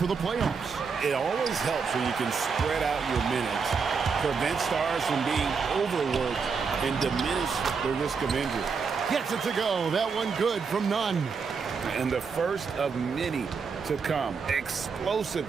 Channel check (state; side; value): quieter; left; 5.5 dB